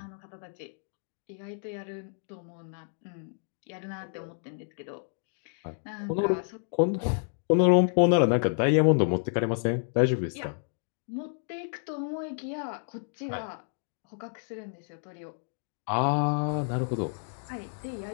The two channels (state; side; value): silent; right; digital silence